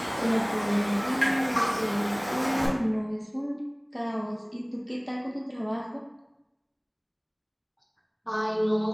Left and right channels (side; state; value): both; identical; correlation 1.00